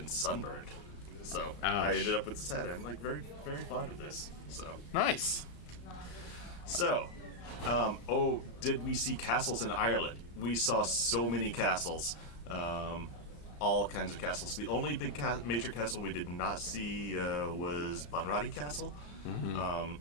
sunburned. So I Ouch. ended up with this hat. I'm like very, very fond of this. Nice. So, did we see castles in Ireland? We saw so many castles, all kinds of castles. The only big major castle we did not see was Bunratty Castle. Mm-hmm.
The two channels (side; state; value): right; late; 34 ms